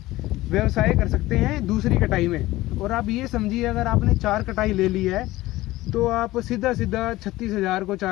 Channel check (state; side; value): quieter; right; 17.7 dB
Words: व्यवसाय कर सकते हैं दूसरी कटाई में। और आप ये समझिए, अगर आपने 4 कटाई ले ली है तो आप सीधा 36,000 को